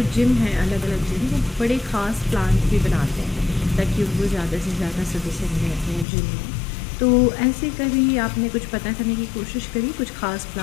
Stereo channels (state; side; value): drops out; right; at 6.1 s